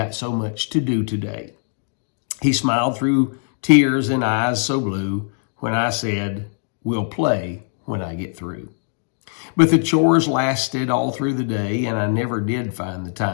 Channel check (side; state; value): right; silent; 62 dB below the other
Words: so much to do today.' He smiled through tears and eyes so blue when I said, 'We'll play when I get through.' But the chores lasted all through the day, and I never did find the